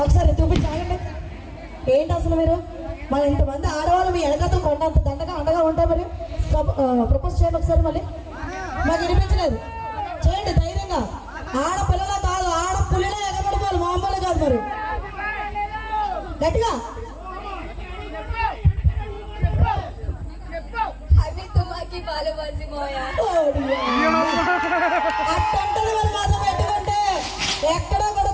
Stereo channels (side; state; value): both; identical; correlation 1.00